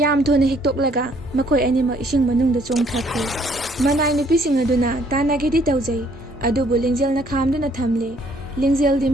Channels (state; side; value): normal; both; correlation 0.64